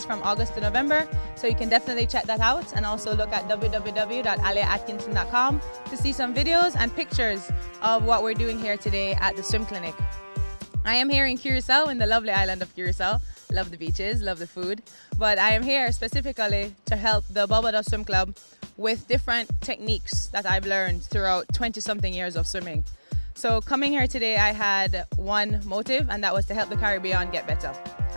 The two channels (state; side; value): inverted; both; correlation -1.00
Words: from August to November. So you can definitely check that out and also look at www.aliaatkinson.com to see some videos and pictures of what we're doing here today at the swim clinic. I am here in Curacao, in the lovely island of Curacao. Love the beaches, love the food. But I am here specifically to help the Bulado Swim Club with different techniques that I've learned throughout 20-something years of swimming. So coming here today, I had one motive, and that was to help the Caribbean get better.